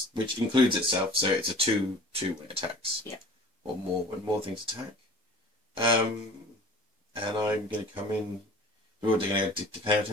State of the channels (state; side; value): normal; both; correlation 0.44